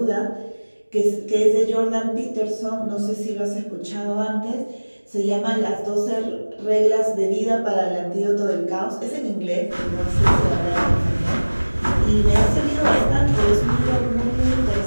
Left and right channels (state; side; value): inverted; both; correlation -1.00